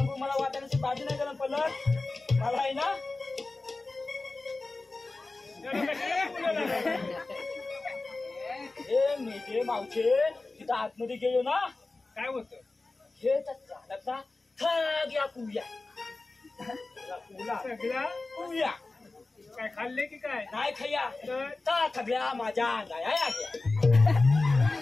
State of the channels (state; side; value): quieter; right; 3.4 dB